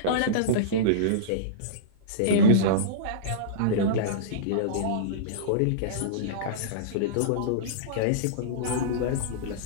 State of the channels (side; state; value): both; different; correlation -0.05